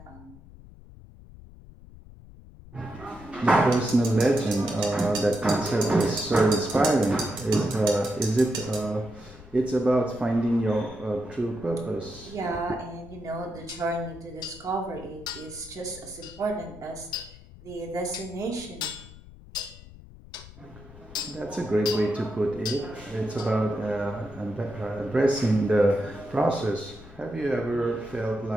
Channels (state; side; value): noise; left; rumble, 19 dB below the sound